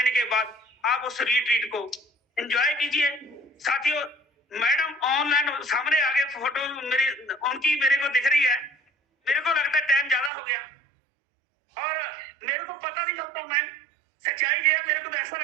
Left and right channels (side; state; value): left; drops out; at 10.3 s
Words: के बाद आप उस रिट्रीट को एंजॉय कीजिए साथियों। मैडम ऑनलाइन सामने आगे फोटो मेरी उनकी मेरे को दिख रही है, मेरे को लगता है टाइम ज्यादा हो गया और मेरे को पता नहीं चलता मैम, सच्चाई ये है, मेरे को तो ऐसा